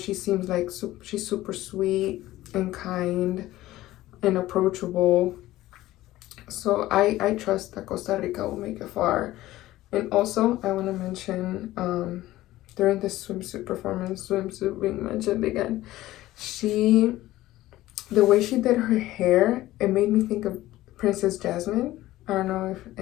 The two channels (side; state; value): right; quieter; 16.1 dB